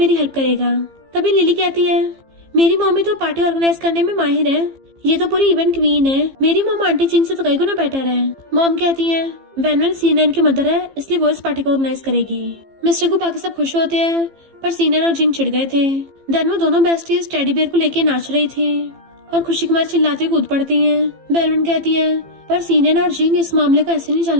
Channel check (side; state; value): left; late; 15 ms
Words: हेल्प करेगा। तभी लिली कहती है मेरी मम्मी तो पार्टी ऑर्गेनाइज करने में माहिर है। ये तो पूरी इवेंट क्वीन है। मेरी मॉम आंटी जिंग से तो कई गुना बेटर है। मॉम कहती है वैन सीनियर की मदर है इसलिए वो इस पार्टी को ऑर्गेनाइज करेगी। मिस्टर को बाकी सब खुश होते हैं पर सीनियर और जिंग चिढ़ गए थे। देन वो दोनों बेस्टीज टेडी बियर को लेके नाच रही थी और खुशी कुमार चिल्लाते कूद पड़ती है। वेलवेट कहती है पर सीनियर और जिंग इस मामले को ऐसे नहीं